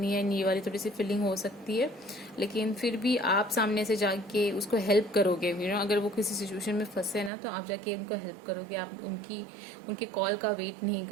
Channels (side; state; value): left; drops out; at 7.3 s